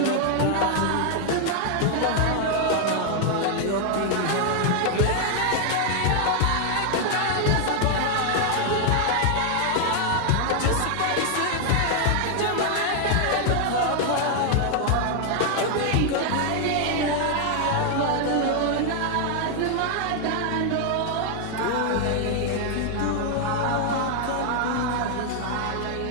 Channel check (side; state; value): both; different; correlation 0.00